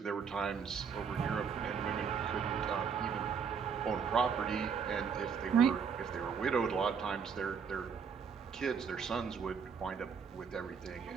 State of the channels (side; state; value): left; quieter; 6.4 dB